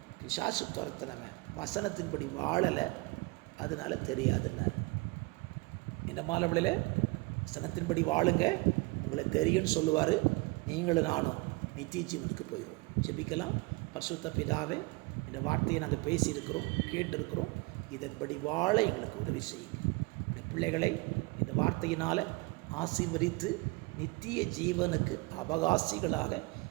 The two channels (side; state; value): left; quieter; 25.1 dB